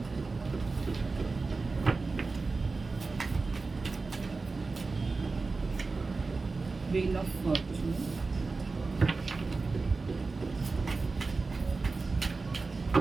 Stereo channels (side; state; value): left; quieter; 3.9 dB